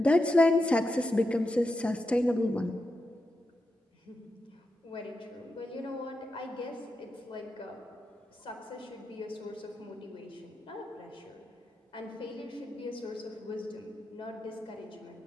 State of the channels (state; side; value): normal; both; correlation 0.87